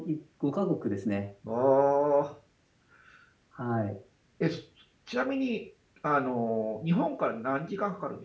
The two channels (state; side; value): identical; both; correlation 1.00